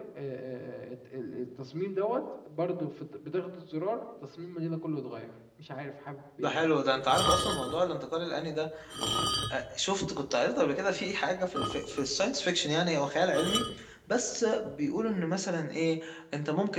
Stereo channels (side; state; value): both; identical; correlation 1.00